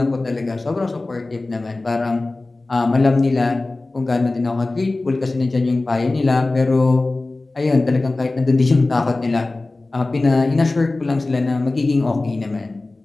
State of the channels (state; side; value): quieter; right; 3.1 dB